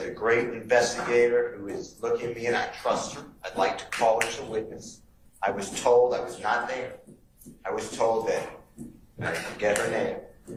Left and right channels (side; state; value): both; identical; correlation 1.00